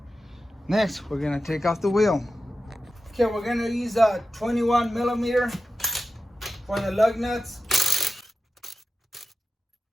Next, we're gonna take off the wheel. Okay, we're gonna use a 21 millimeter for the lug nuts.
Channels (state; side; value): normal; both; correlation 0.92